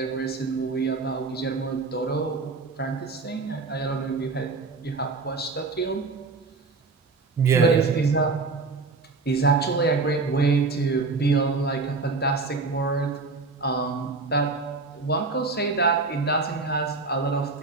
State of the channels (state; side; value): quieter; left; 4.0 dB